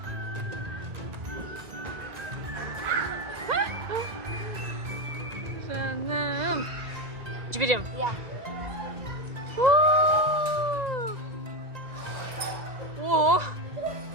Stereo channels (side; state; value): left; late; 1.9 ms